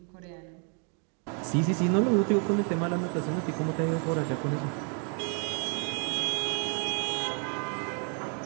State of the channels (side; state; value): left; quieter; 39.3 dB